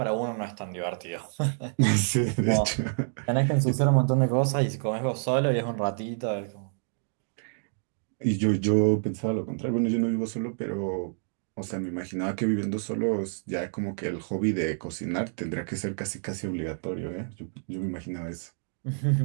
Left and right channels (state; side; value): silent; left; digital silence